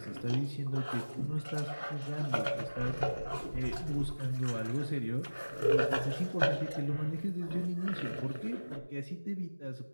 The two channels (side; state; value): both; inverted; correlation -1.00